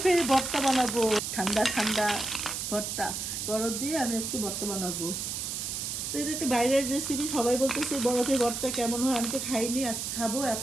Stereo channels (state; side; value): noise; right; hiss, 4 dB below the sound